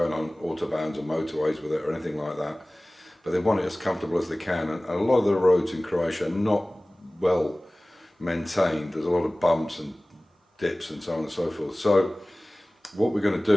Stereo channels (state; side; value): normal; both; correlation 0.98